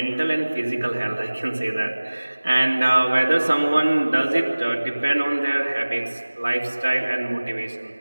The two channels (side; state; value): both; inverted; correlation -1.00